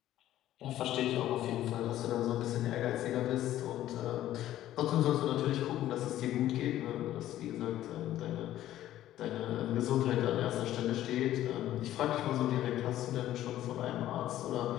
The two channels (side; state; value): right; quieter; 13.2 dB